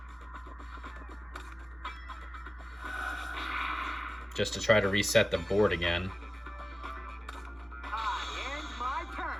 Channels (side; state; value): both; normal; correlation 0.97